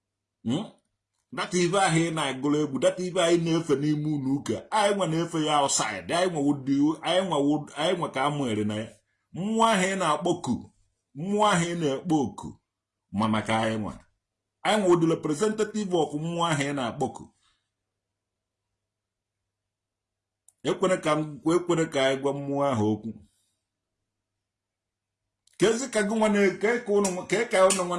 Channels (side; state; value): both; identical; correlation 1.00